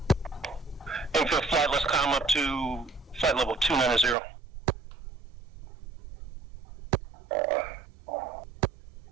Infield flight, let's climb up to flight level 290.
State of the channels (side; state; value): left; drops out; at 4.2 s